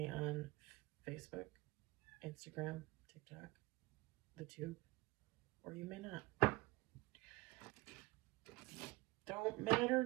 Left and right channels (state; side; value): quieter; left; 22.1 dB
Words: on Facebook, Instagram, TikTok, the tube, or you may not. Don't matter